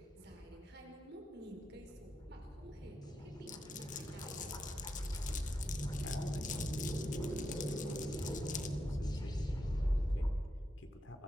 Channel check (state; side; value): normal; both; correlation 0.86